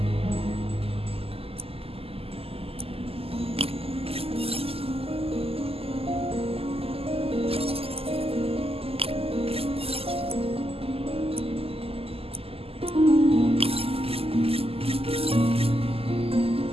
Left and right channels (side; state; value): left; late; 0.28 ms